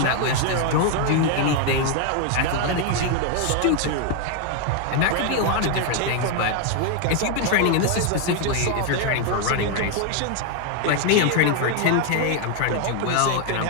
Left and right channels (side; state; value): both; different; correlation 0.01